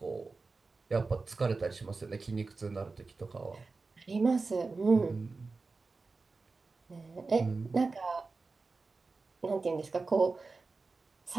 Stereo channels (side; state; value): left; quieter; 4.0 dB